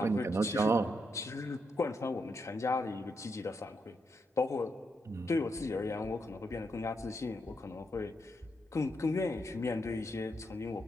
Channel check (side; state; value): both; normal; correlation 0.81